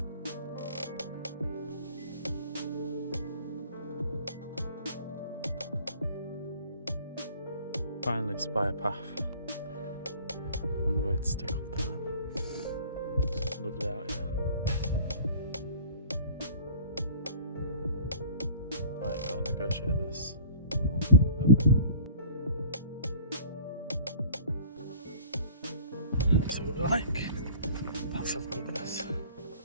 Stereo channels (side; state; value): both; inverted; correlation -0.46